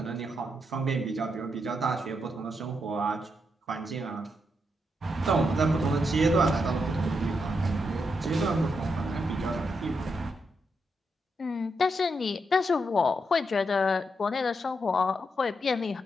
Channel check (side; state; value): both; normal; correlation 0.82